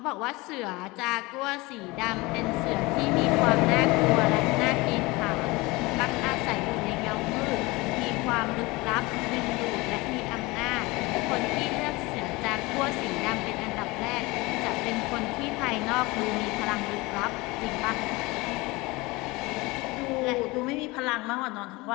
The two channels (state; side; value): quieter; right; 23.1 dB